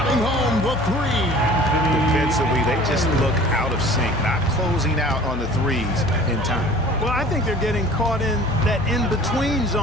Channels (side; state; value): left; noise; hum, 7 dB below the sound